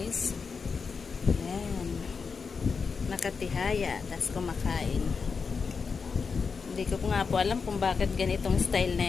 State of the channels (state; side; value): quieter; right; 5.3 dB